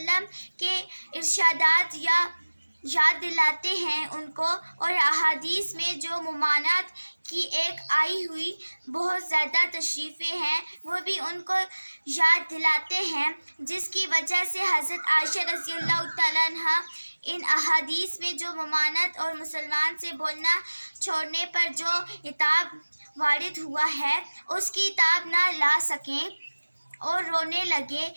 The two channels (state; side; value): inverted; both; correlation -1.00